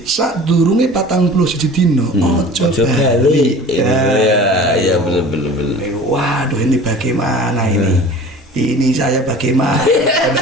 saat durunge 41 dino ojo bali. Ya betul. Waduh, ini bagaimana ini? Ini saya bagaimana?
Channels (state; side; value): normal; both; correlation 0.41